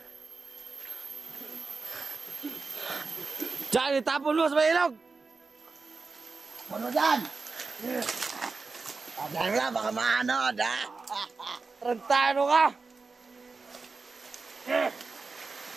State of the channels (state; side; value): quieter; left; 4.2 dB